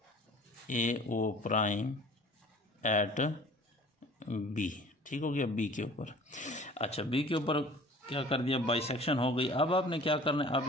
A O prime at B, ठीक हो गया, बी के ऊपर। अच्छा, बी के ऊपर क्या कर दिया, बाइसेक्शन हो गई। अब आपने क्या करना है,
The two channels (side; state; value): both; normal; correlation 0.47